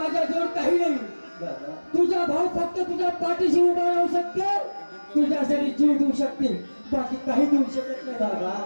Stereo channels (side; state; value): both; inverted; correlation -1.00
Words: काही नाही तुझा भाऊ फक्त तुझ्या पाठीशी उभा राहू शकतो तुझ्यासाठी जीव देऊ शकते बाकी काही देऊ शकत नाही